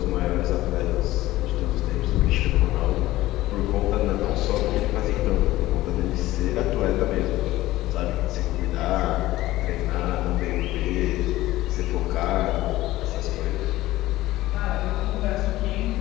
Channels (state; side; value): quieter; right; 16.6 dB